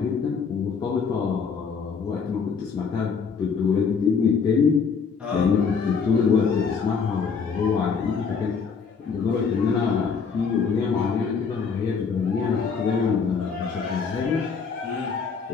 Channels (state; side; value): quieter; right; 5.7 dB